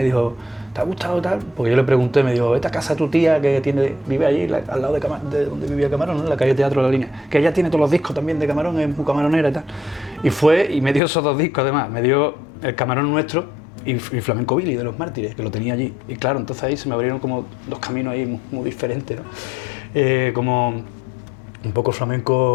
dijo, ¿te ha gustado tal? Porque yo le pregunté, me dijo, vete a casa de tu tía que vive allí, al lado de donde vivía Camarón, ¿no? En la calle Teatro de la Línea, que ella tiene todos los discos también de Camarón, es muy camaronera y tal. Y fue y me dio esos 2 discos además, me dio el Camarón Nuestro y Flamenco Billy de Los Mártires, que lo tenía allí. Y claro, entonces ahí se me abrieron como 2 caminos ahí muy diferentes, ¿no? Como un poco el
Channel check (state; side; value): drops out; right; at 11.0 s